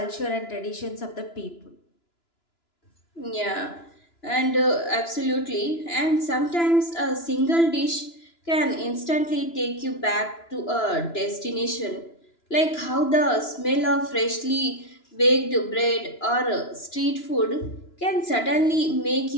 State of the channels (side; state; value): right; late; 2.9 ms